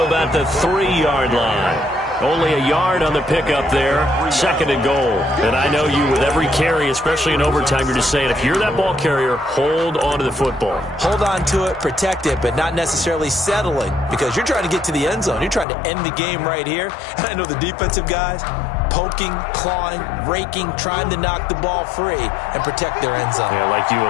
about the 3-yard line. Only a yard on the pickup there. 2nd and goal. And I know you, with every carry, especially in overtime, you're just saying, if you're that ball carrier, hold on to the football. Hold on to it, protect it, but not necessarily settling, because you're trying to get to the end zone. You're trying to end the game right here. And I know the defensive guys poking, clawing, raking, trying to knock the ball free and protect their end zone. Yeah, like you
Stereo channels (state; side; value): drops out; right; at 15.7 s